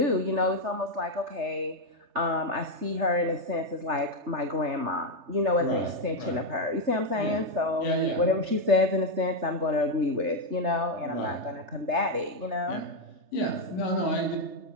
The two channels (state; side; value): late; left; 3.3 ms